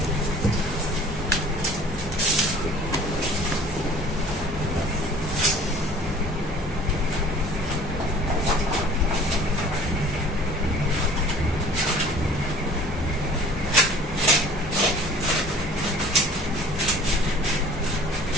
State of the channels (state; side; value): normal; both; correlation 0.48